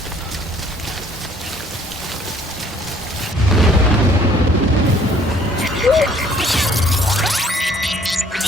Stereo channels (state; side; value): normal; both; correlation 0.59